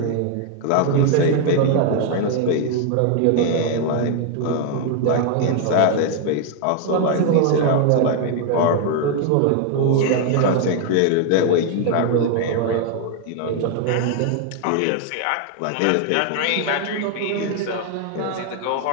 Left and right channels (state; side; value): different; both; correlation 0.00